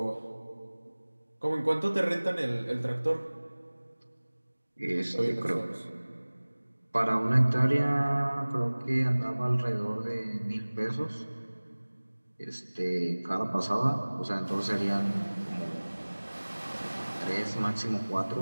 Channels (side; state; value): both; inverted; correlation -1.00